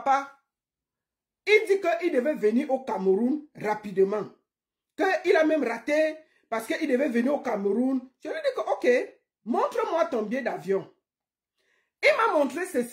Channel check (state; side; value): identical; both; correlation 1.00